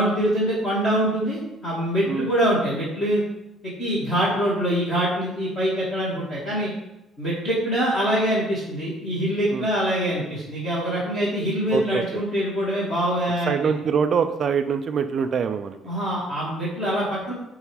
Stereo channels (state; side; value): normal; both; correlation 0.55